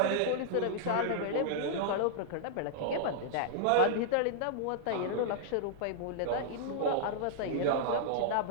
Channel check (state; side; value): different; both; correlation -0.01